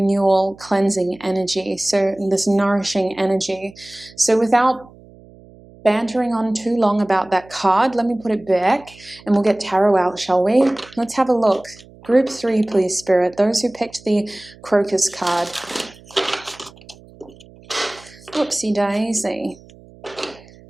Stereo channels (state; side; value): noise; right; hum, 23 dB below the sound